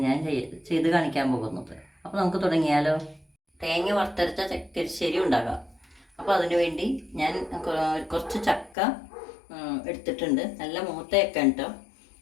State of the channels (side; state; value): right; drops out; at 8.8 s